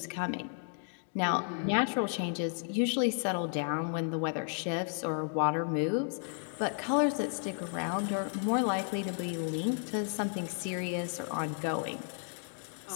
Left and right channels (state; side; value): silent; right; 56 dB below the other